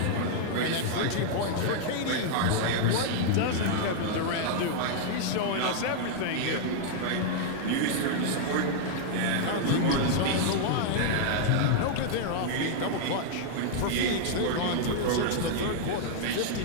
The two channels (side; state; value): both; different; correlation -0.01